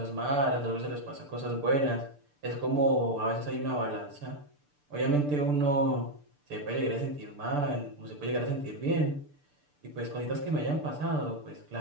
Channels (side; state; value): left; late; 6.8 ms